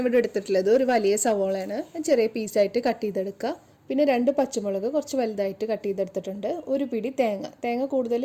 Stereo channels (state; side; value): identical; both; correlation 1.00